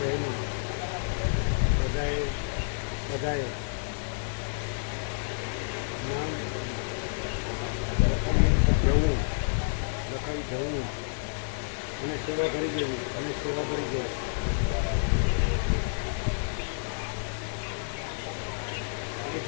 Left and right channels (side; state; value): right; silent; 58 dB below the other